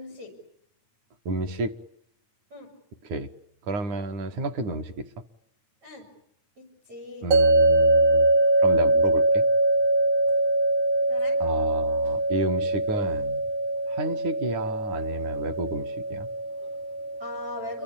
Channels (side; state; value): left; late; 9.3 ms